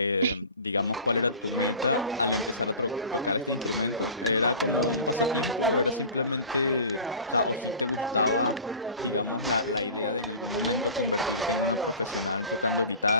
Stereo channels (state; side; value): inverted; both; correlation -0.39